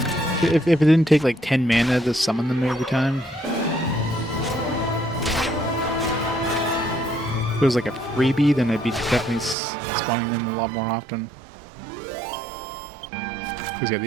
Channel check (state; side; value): drops out; left; at 9.6 s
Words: If it didn't take like 10 mana to summon them every time. If it was like a freebie, then I'd be definitely spawning them a lot more often. Because yeah,